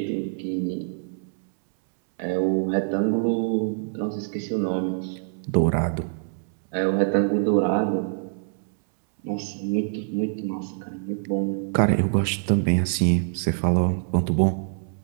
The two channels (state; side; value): silent; left; 62 dB below the other